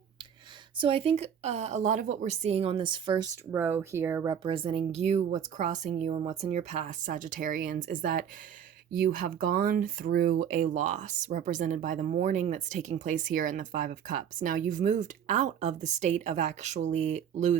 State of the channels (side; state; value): left; quieter; 8.5 dB